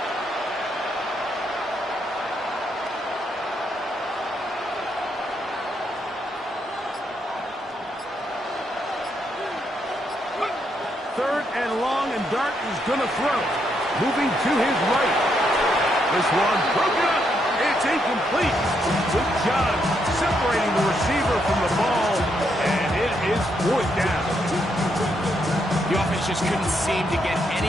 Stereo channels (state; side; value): normal; both; correlation 0.77